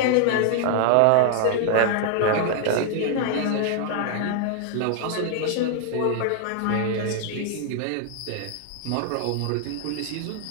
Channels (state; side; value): different; both; correlation 0.00